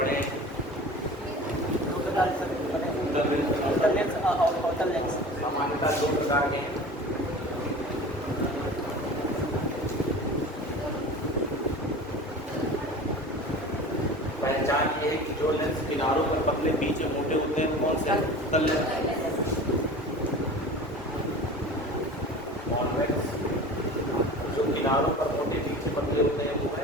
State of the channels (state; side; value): normal; both; correlation 0.37